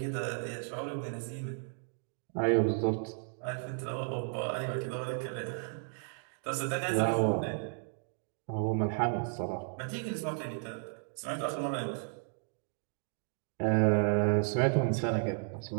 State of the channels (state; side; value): silent; left; 55 dB below the other